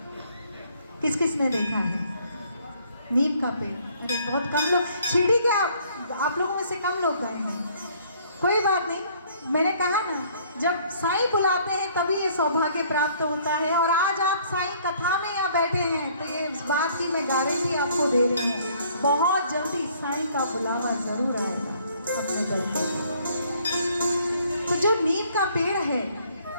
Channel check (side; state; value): both; inverted; correlation -0.61